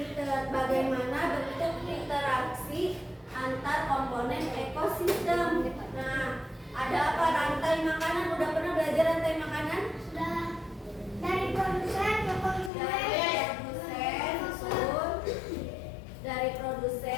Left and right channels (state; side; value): drops out; right; at 12.7 s